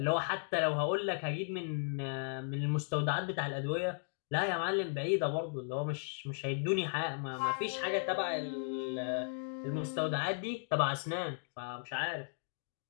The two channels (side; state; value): right; silent; digital silence